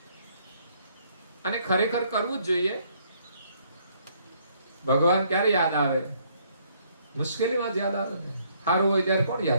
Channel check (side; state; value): both; inverted; correlation -0.67